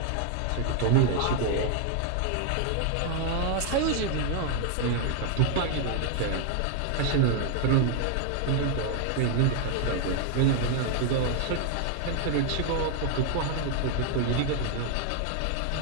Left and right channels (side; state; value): both; different; correlation 0.00